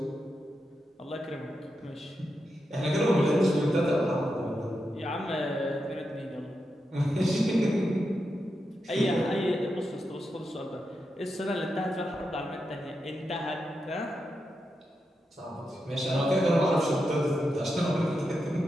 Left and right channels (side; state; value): both; normal; correlation 0.87